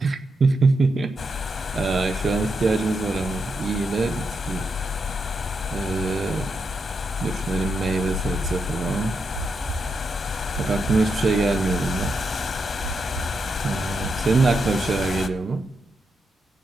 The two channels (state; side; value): normal; both; correlation 0.83